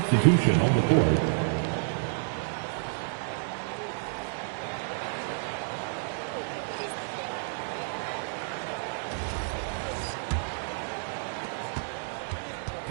on the court.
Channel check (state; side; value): silent; left; digital silence